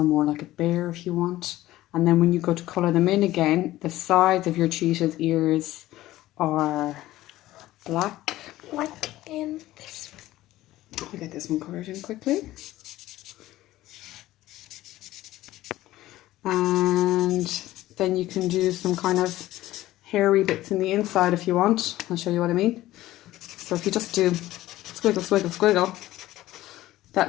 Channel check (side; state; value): right; quieter; 15.8 dB